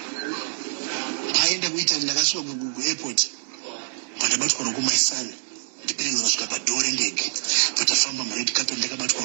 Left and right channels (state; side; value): silent; left; digital silence